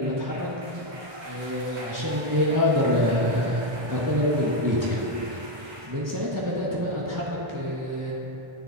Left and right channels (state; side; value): late; left; 1.2 ms